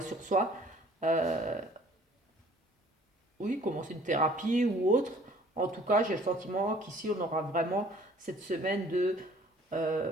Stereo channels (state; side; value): normal; both; correlation 0.54